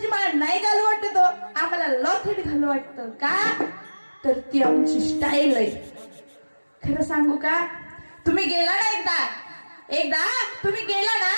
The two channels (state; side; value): inverted; both; correlation -1.00